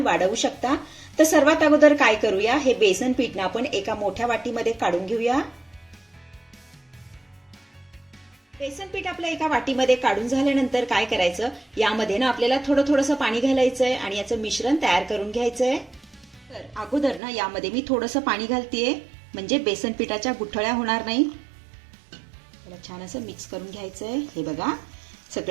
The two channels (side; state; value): left; drops out; at 17.2 s